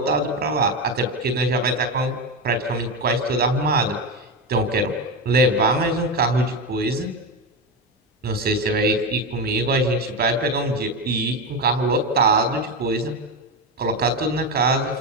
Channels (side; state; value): both; normal; correlation 0.15